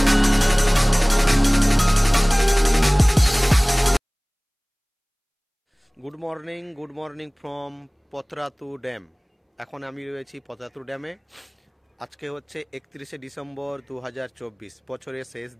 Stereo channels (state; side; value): identical; both; correlation 1.00